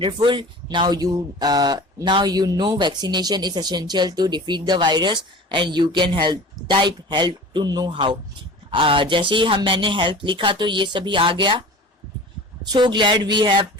now you know vaccination is essential to defeat the virus and you can help, type help to know how. जैसे ही मैंने हेल्प लिखा तो ये सभी आ गया. So glad we have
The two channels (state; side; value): normal; both; correlation 0.39